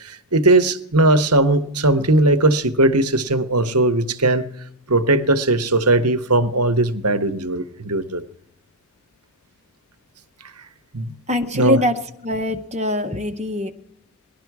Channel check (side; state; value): both; normal; correlation -0.01